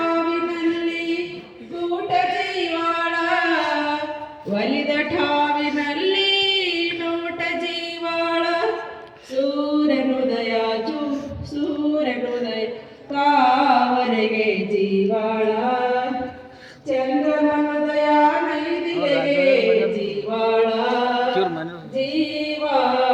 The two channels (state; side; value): identical; both; correlation 1.00